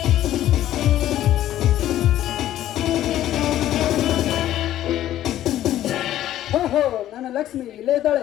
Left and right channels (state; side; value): quieter; right; 12.8 dB